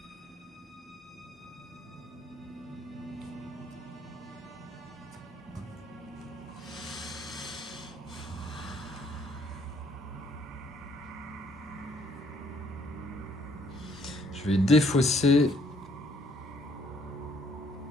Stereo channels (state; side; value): normal; both; correlation 0.65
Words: Je vais défausser.